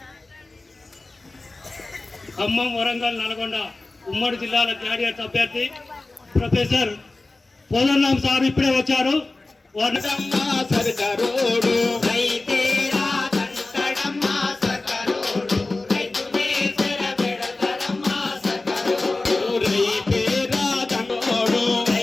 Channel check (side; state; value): right; quieter; 3.2 dB